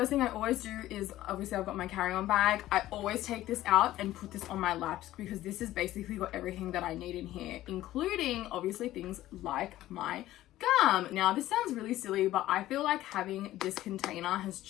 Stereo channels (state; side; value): quieter; right; 14.8 dB